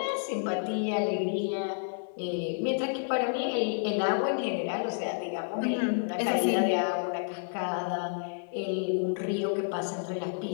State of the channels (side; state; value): right; silent; digital silence